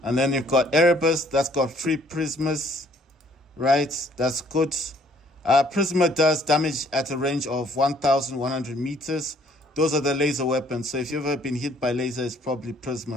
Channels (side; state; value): both; normal; correlation 0.61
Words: And then you've got Erebus, that's got 3 Prismas. Right, that's good. Prisma does damage at a range of 1,100 meters. Those are the laser weapons. So if you've ever been hit by laser, it's probably